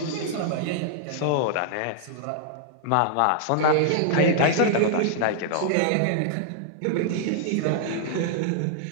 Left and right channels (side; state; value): both; different; correlation -0.01